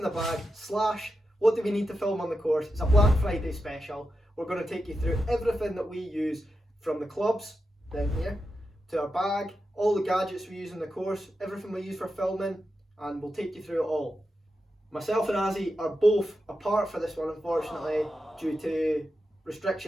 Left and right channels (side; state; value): both; normal; correlation 0.89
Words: the bag / what do we need to film on the course. It's a Black Friday special. We're going to take you through everything that we use, from the clubs down here to our bag, all the gadgets we use in the course, everything we use for filming, and we'll take you through it all. Myself and Azzie are both apart for this one, unfortunately, due to